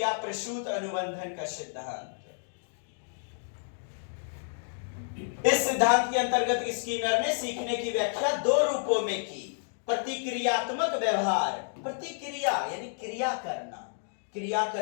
प्रसूत अनुबंधन का सिद्धांत। इस सिद्धांत के अंतर्गत स्किनर ने सीखने की व्याख्या दो रूपों में की। प्रतिक्रियात्मक व्यवहार, प्रतिक्रिया यानी क्रिया करना, क्रिया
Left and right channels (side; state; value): right; silent; digital silence